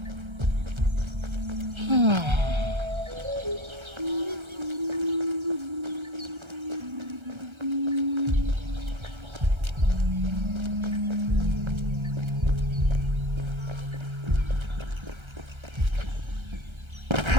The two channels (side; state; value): left; late; 1.3 ms